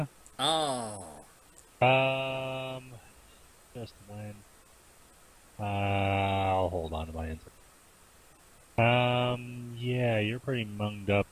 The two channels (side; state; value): both; identical; correlation 1.00